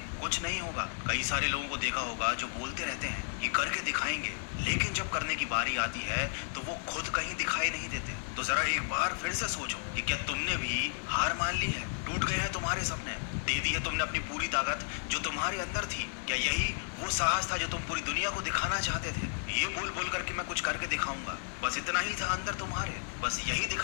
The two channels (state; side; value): silent; right; digital silence